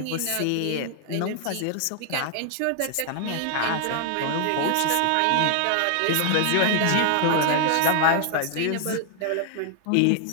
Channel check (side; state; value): both; different; correlation 0.00